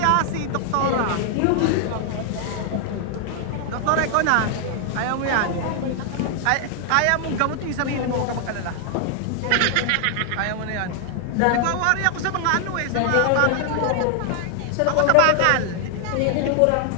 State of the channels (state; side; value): different; both; correlation 0.00